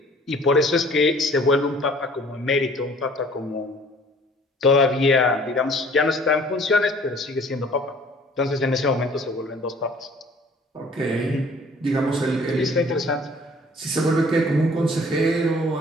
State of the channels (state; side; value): normal; both; correlation 0.53